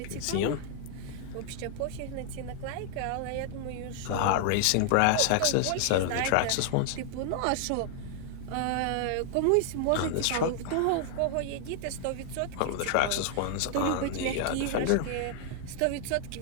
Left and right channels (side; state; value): both; different; correlation 0.00